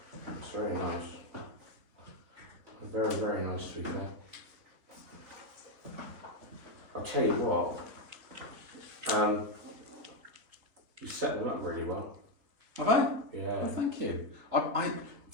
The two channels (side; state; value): left; late; 3.9 ms